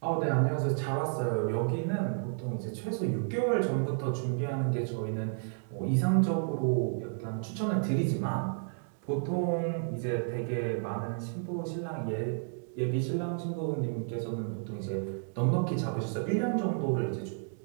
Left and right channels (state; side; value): silent; left; digital silence